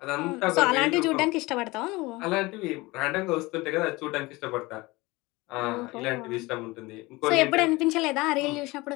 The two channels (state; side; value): quieter; right; 22.2 dB